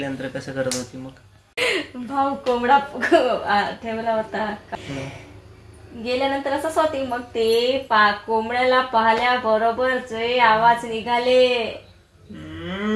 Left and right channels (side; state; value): both; identical; correlation 1.00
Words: कसं करत होती मग? भाऊ कोंबडा ठेवला होता, गेल्यानंतर असंच होती. मग ते कोंबड्याला पाहिल्या बरोबर जे आवाज निघाले